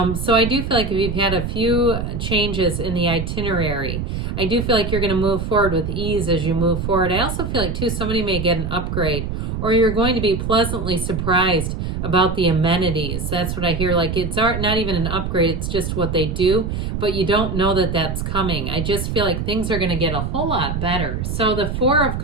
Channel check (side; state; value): right; noise; rumble, 3 dB below the sound